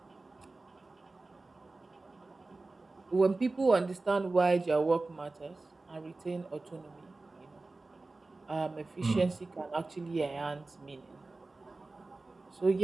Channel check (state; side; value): quieter; left; 3.4 dB